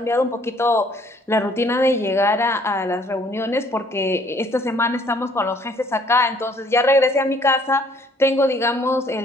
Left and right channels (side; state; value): both; normal; correlation 0.61